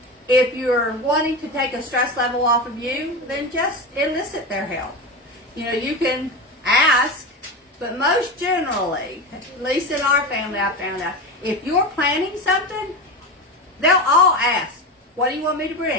wanting to take a stress level off of you, then just elicit their help. You know, you can ask, but most generally, at least in our family, I found out, if you're planning something, they'll all ask, what do you want me to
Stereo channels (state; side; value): normal; both; correlation 0.22